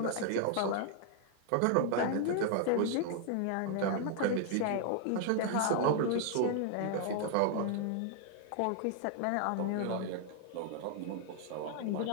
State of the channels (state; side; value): different; both; correlation 0.00